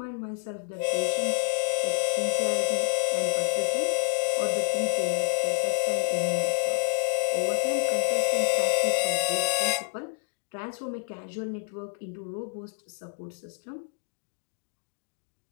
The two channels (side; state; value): right; silent; 59 dB below the other